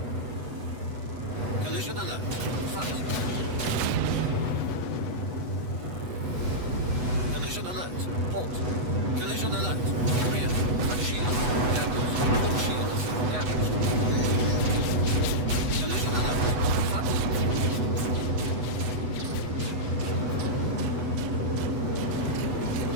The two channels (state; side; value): late; left; 8.1 ms